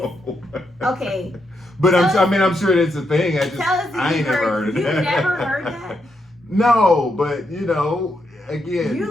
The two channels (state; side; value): normal; both; correlation 0.81